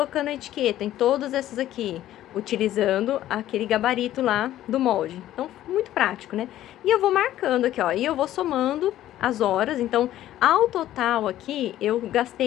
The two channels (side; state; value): right; quieter; 13.3 dB